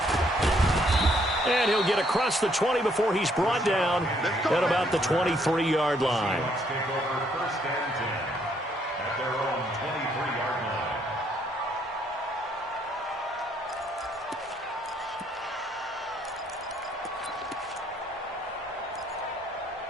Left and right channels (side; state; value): both; normal; correlation 0.69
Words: And he'll get across the 20 before he's brought down at about the 23-yard line.